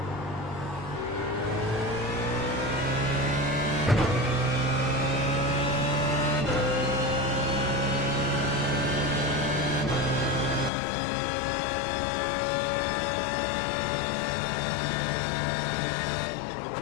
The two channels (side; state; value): right; drops out; at 10.7 s